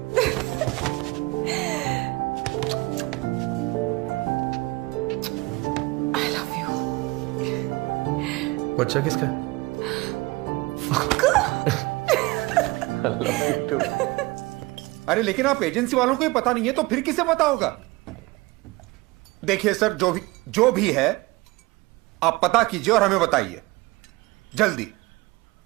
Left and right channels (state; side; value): quieter; left; 22.4 dB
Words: I love you। बच्चा किसका है? I love you too। अरे लेकिन आप एजेंसी वालों को ही पता नहीं है तो फिर किसे पता होगा? देखिए सर, जो भी है आप पता कीजिए और हमें बताइए जल्दी।